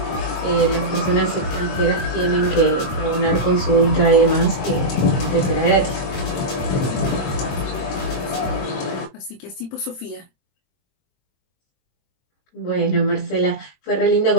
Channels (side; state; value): right; late; 22 ms